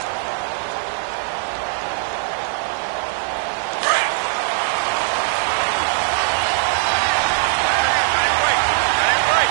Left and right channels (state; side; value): silent; left; digital silence